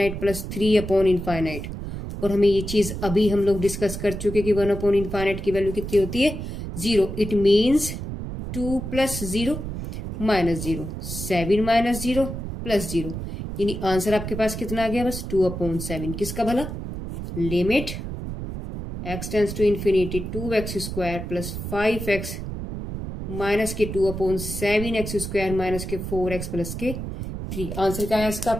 + 3/∞। और हमें ये चीज अभी हम लोग डिस्कस कर चुके कि 1/∞ की वैल्यू कितनी होती है, 0। It means 2 + 0 -0, 7 - 0 +0। यानी आंसर आपके पास कितना आ गया, बस 2/7। किसका भला, limit x tends to infinity 2x² + 5x minus के 2/7x² माइनस के 4x + के 3। आंसर क्या है इसका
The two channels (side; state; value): right; noise; rumble, 7 dB below the sound